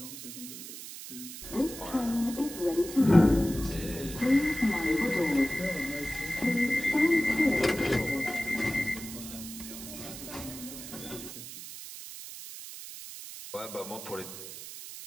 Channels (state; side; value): noise; right; hiss, 11 dB below the sound